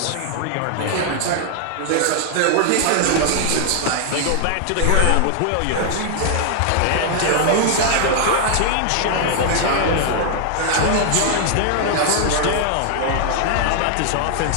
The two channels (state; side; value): different; both; correlation 0.00